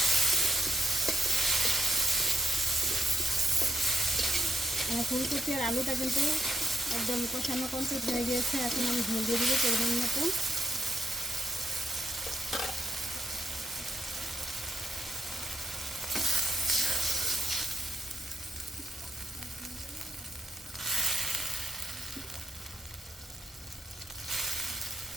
ফুলকপি আর আলুটা কিন্তু একদম কষানো কমপ্লিট হয়ে গিয়েছে। এখন আমি ঝোল দিয়ে দিব পরিমাণ মতো।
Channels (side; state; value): both; normal; correlation 0.80